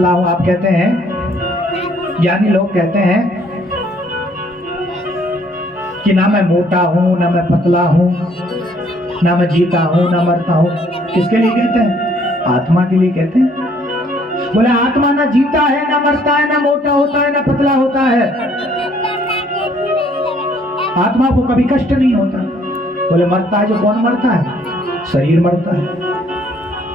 हूं, आप कहते हैं, ज्ञानी लोग कहते हैं कि ना मैं मोटा हूं, ना मैं पतला हूं, ना मैं जीता हूं, ना मरता हूं। किसके लिए कहते हैं? आत्मा के लिए कहते हैं। बोले आत्मा ना जीता है, ना मरता है, ना मोटा होता है, ना पतला होता है। आत्मा को कभी कष्ट नहीं होता। बोले मरता है जो कौन मरता है? शरीर मरता है,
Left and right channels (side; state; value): both; normal; correlation 0.63